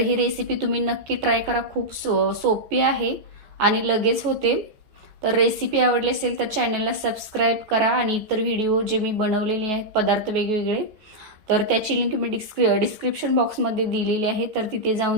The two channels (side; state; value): left; late; 14 ms